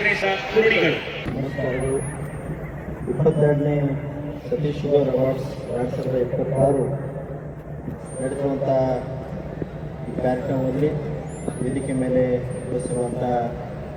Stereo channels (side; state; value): both; identical; correlation 1.00